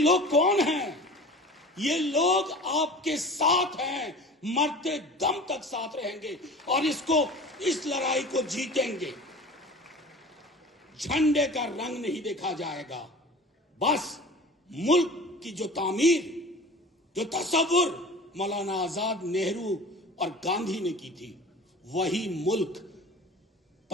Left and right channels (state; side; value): normal; both; correlation 0.39